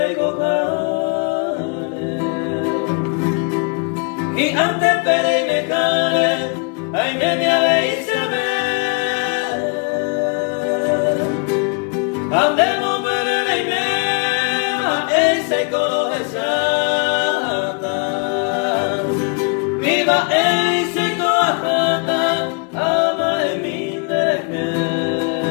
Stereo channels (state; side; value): quieter; right; 37.0 dB